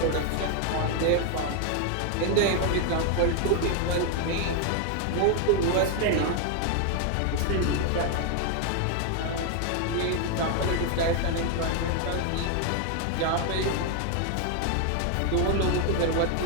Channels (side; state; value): both; different; correlation 0.00